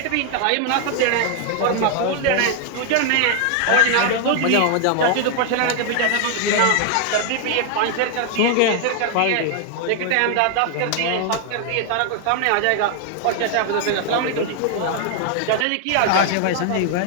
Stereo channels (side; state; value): both; different; correlation 0.00